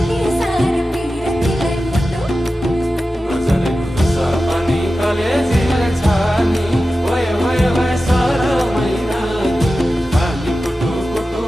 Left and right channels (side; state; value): both; normal; correlation 0.93